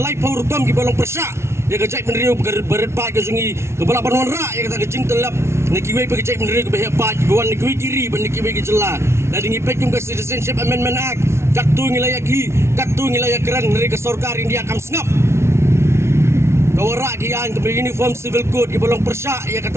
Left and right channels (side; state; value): left; late; 0.13 ms